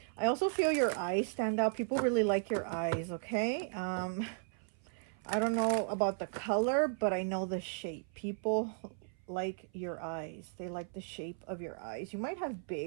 I also feel your eyes stand out. People really like your eyes, okay? I don't know about the color, but I know the shape. People like your eyes. They like the shape of your eyes. You might have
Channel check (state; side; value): silent; left; 54 dB below the other